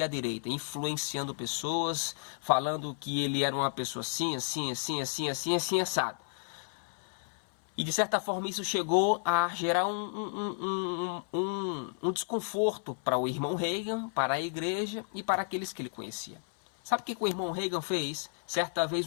e à direita, influenciando pessoas, falando que ele era uma pessoa assim, assado. E de certa forma isso chegou a gerar um desconforto para o irmão Reagan, para a igreja e para aqueles que ele conhecia. Sabe o que o irmão Reagan fez? Certa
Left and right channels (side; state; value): right; silent; 56 dB below the other